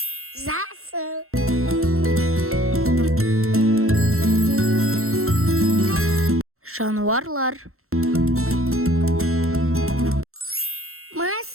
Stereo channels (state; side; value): late; left; 0.62 ms